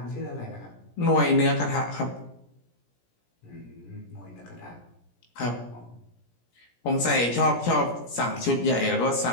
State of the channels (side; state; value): right; late; 17 ms